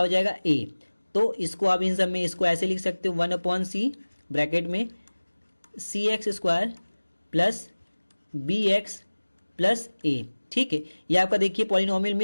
जाएगा a। तो इसको आप इन सब में इसको ऐसे लिख सकते हो, 1/c ब्रैकेट में c x square plus B x plus a। ठीक है, ये आपका देखिए पॉलिनोमियल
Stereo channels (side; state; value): both; inverted; correlation -1.00